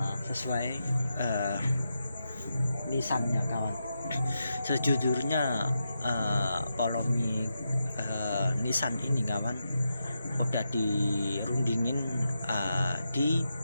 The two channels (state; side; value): inverted; both; correlation -0.86